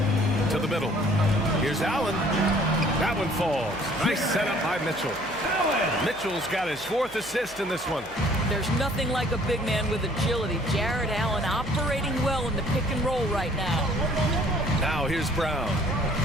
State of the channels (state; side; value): noise; right; hum, 21 dB below the sound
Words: To the middle. Here's Allen. That one falls. Nice setup by Mitchell. Mitchell's got his 4th assist in this one. There's nothing like a big man with agility. Jared Allen operating well in the pick and roll right now. Now here's Brown.